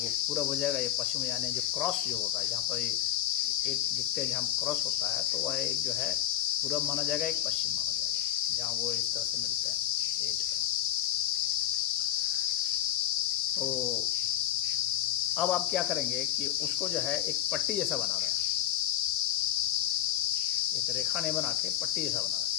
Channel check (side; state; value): right; quieter; 12.1 dB